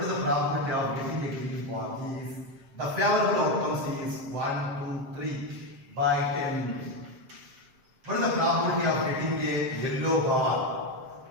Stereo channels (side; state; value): left; late; 7.5 ms